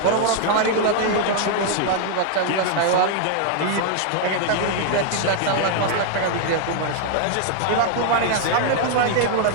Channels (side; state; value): both; different; correlation 0.00